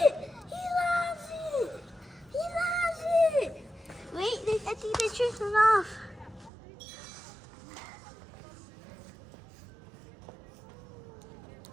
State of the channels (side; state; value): left; drops out; at 6.5 s